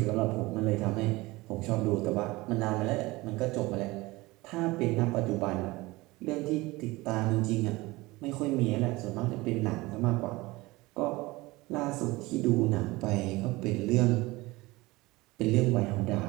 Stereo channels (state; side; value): quieter; left; 21.2 dB